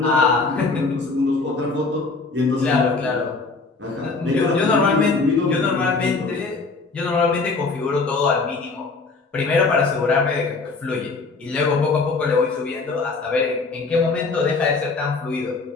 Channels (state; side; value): quieter; right; 4.0 dB